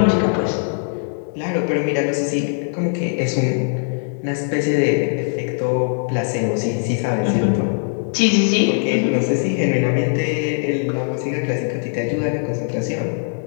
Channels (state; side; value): silent; right; 65 dB below the other